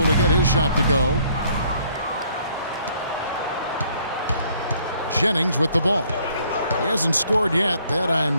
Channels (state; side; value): inverted; both; correlation -0.64